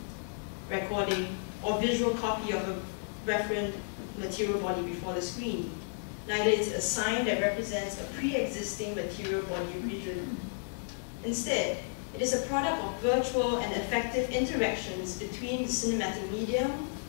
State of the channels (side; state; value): right; silent; digital silence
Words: recording, or visual copy of a referent material body before the screen. Neither is it a sign that represents a pre-existing material body region. Instead, it is a product of virtual and effective interactions between the cinematic medium,